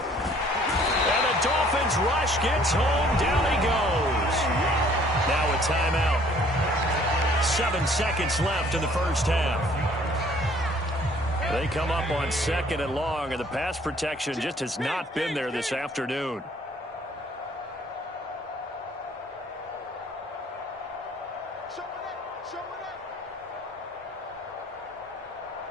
And the Dolphins rush gets home. Down he goes. Now a timeout. 7 seconds left in the first half. They come up on 2nd and long, and the pass protection just has not been there this afternoon.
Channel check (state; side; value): normal; both; correlation 0.58